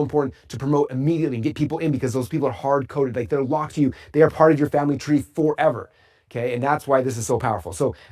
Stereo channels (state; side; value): identical; both; correlation 1.00